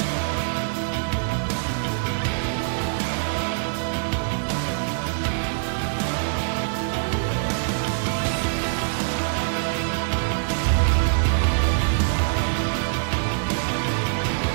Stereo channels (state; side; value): silent; left; 59 dB below the other